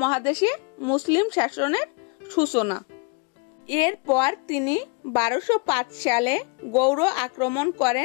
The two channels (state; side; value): quieter; right; 31.7 dB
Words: মুসলিম শাসনের সূচনা। এরপর তিনি 1205 সালে গৌড় আক্রমণ